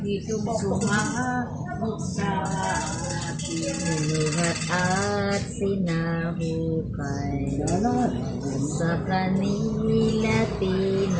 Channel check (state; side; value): identical; both; correlation 1.00